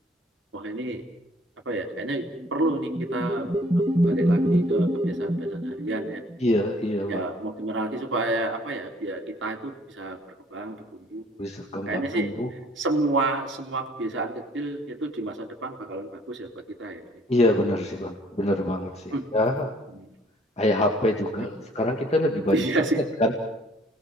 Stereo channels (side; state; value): both; normal; correlation 0.58